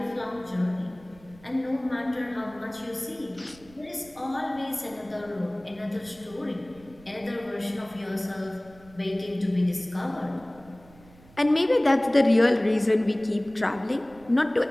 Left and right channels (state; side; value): noise; right; rumble, 24 dB below the sound